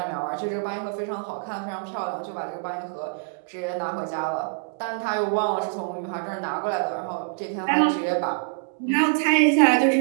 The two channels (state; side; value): silent; left; digital silence